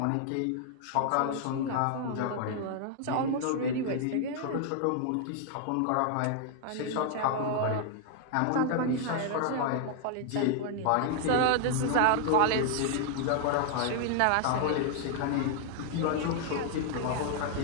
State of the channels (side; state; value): both; different; correlation 0.00